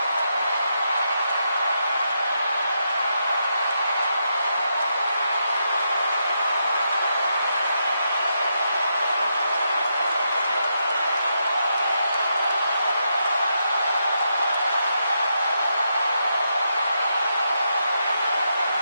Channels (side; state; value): both; inverted; correlation -0.82